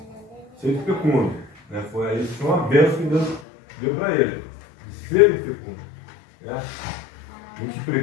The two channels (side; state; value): right; drops out; at 3.5 s